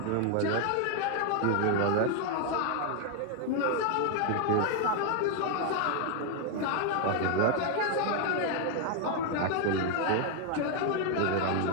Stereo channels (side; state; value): both; different; correlation 0.00